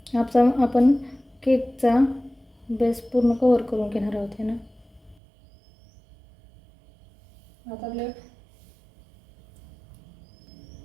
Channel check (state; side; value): drops out; left; at 5.2 s